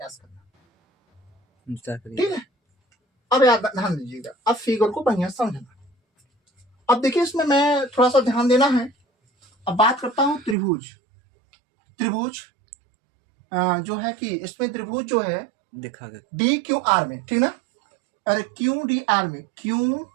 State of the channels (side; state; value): left; drops out; at 10.6 s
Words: प्रयास करना, करिए। ठीक है। अब याद ध्यान दीजिएगा, अब फिगर को बढ़िया समझना। अब देखिए इसमें मैं थोड़ा सा ध्यान देना है। अब बात करता हूं त्रिभुज। त्रिभुज जो है कि इसमें त्रिभुज जो है दिखा के डी क्यू आर में, ठीक ना, अरे क्यू डी आर में, क्यू